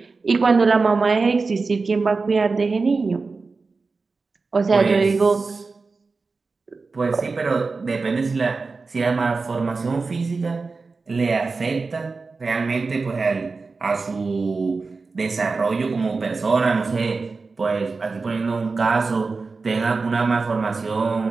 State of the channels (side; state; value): left; quieter; 4.2 dB